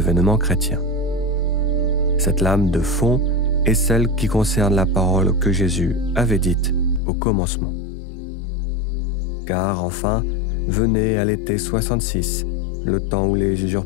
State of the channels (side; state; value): right; drops out; at 7.0 s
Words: chrétien. Cette lame de fond est celle qui concerne la parole que Jésus avait dite au commencement. Car enfin, venait à l'été 66, le temps où les